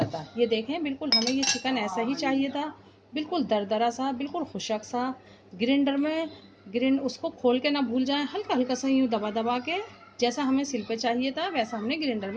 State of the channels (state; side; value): identical; both; correlation 1.00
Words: था। ये देखें, बिल्कुल हमें ये चिकन ऐसा ही चाहिए था, बिल्कुल दरदरा सा, बिल्कुल खुशक सा। ग्राइंडर उसको खोल के ना भूल जाए, हल्का हल्का सा यूँ दबा दबा के, जैसा हमें सिल पे चाहिए था वैसा हमने ग्राइंडर